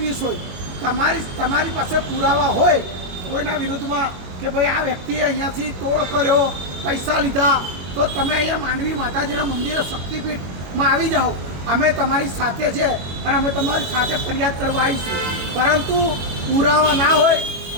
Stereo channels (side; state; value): left; late; 22 ms